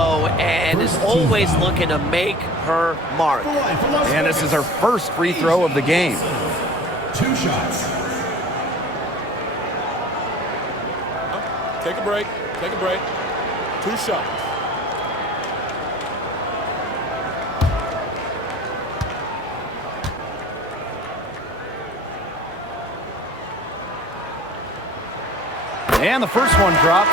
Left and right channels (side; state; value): both; normal; correlation 0.42